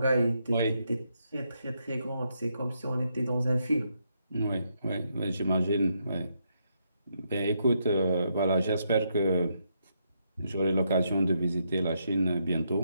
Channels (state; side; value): inverted; both; correlation -0.78